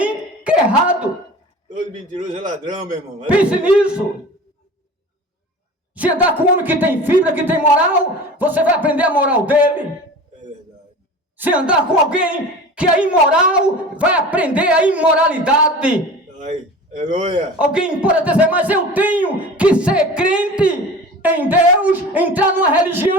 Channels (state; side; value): normal; both; correlation 0.37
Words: que é errado. Todo mentiroso é ladrão, meu irmão. Pense nisso. Se andar com um homem que tem fibra, que tem moral, você vai aprender a moral dele. É verdade. Se andar com alguém que é imoral, vai aprender a imoralidade. Ai, aleluia! Alguém pode dizer, mas eu tenho que ser crente em Deus, entrar numa